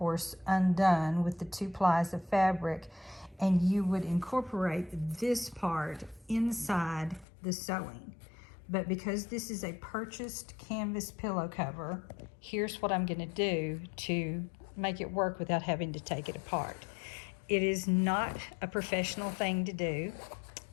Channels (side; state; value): right; drops out; at 7.2 s